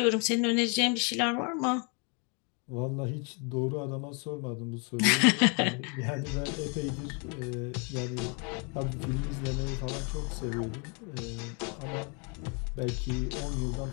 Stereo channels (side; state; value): right; quieter; 35.2 dB